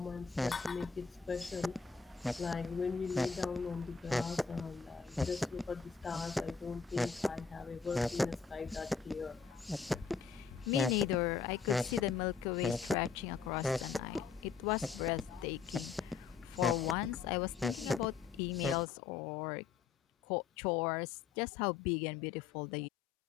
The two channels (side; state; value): right; quieter; 5.8 dB